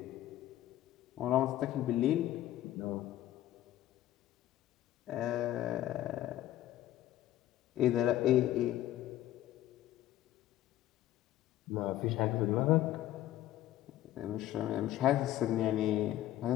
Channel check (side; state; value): right; quieter; 13.7 dB